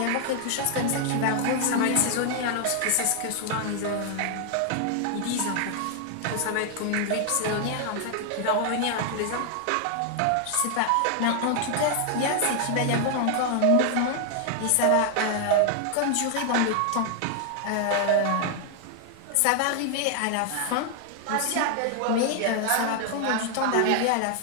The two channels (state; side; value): different; both; correlation 0.00